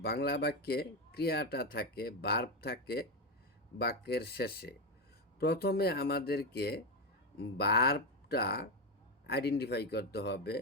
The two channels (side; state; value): both; normal; correlation 0.11